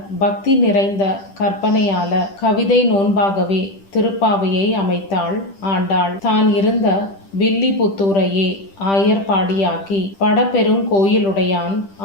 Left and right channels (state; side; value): late; right; 10 ms